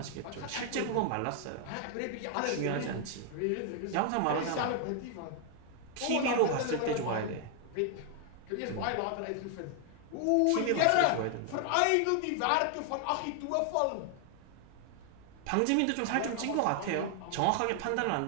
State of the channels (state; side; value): different; both; correlation 0.00